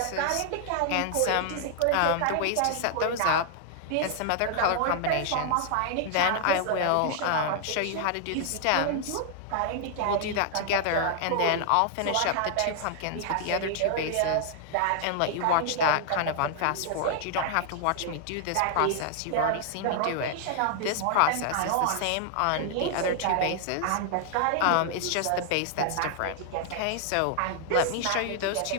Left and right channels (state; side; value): different; both; correlation -0.01